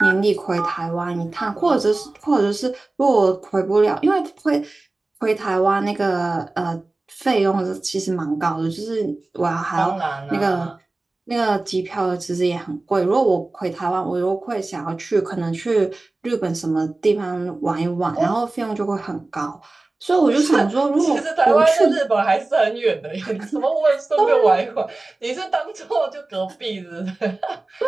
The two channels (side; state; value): left; quieter; 3.1 dB